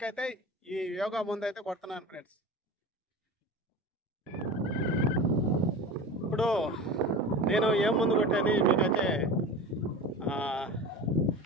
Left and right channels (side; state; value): both; normal; correlation 0.32